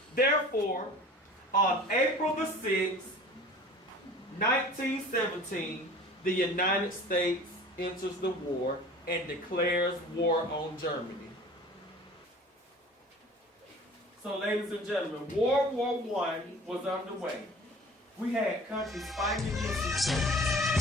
Therefore, on April the 6th, 1917, the United States enters the war and declares war on Germany. So, ladies and gentlemen, World War I was underway. We had countries fighting against each other.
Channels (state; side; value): normal; both; correlation 0.44